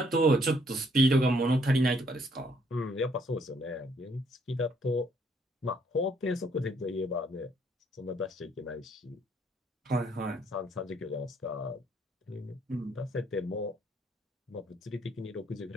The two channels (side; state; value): both; normal; correlation 0.67